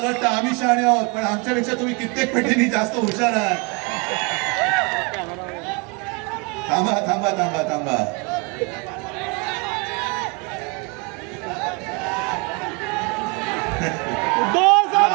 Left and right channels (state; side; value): quieter; left; 30.5 dB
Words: वाटतं आम्ही शहाणे आहोत, पण आमच्यापेक्षा तुम्ही कित्येक पटीने जास्त हुशार आहात. थांबा थांबा थांबा थांबा.